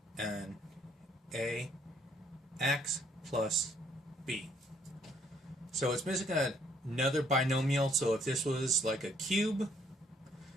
an ax plus b. So it's missing another binomial, so if this was like a cube,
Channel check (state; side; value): normal; both; correlation 0.66